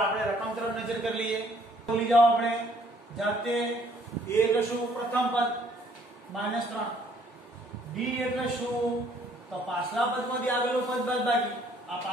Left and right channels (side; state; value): both; normal; correlation 0.63